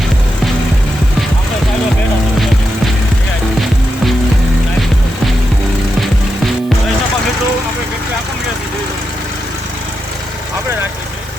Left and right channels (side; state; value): right; noise; hiss, 23 dB below the sound